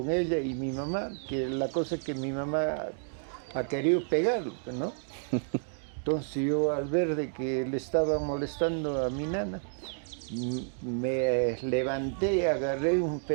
ella y mi mamá? Que la cosa es que mi mamá ha querido pegarlo, ¿no? Entonces yo al ver de que le estaba molestando a mi nana, me levanté, agarré un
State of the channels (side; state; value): left; silent; digital silence